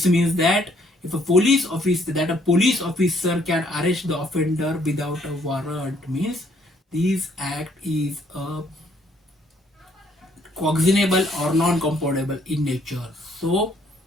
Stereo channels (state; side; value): normal; both; correlation 0.66